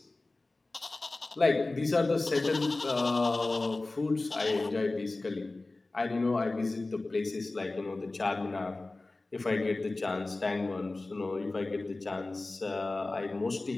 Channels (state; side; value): quieter; right; 3.2 dB